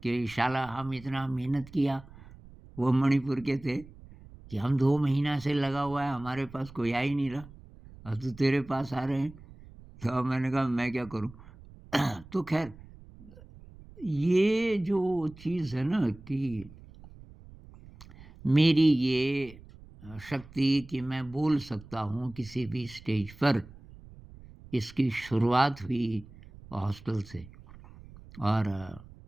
कि शाला हम इतना मेहनत किया, वो मणिपुर के थे, कि हम 2 महीना से लगा हुआ है, हमारे पास कोई आ ही नहीं रहा और तू तेरे पास आ रहे हैं। तो मैंने कहा, मैं क्या करूँ? तो ख़ैर ये जो चीज़ है ना कि मेरी ये शक्ति कि मैं बोल सकता हूँ किसी भी स्टेज पर, इसकी शुरुआत हुई हॉस्टल से। और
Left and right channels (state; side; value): noise; right; rumble, 20 dB below the sound